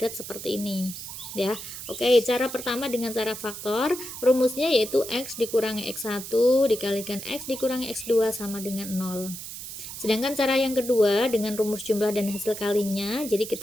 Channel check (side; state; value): right; noise; hiss, 10 dB below the sound